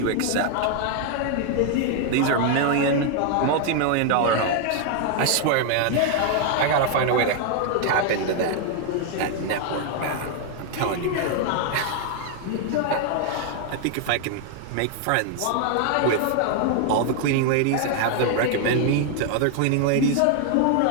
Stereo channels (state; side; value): different; both; correlation 0.00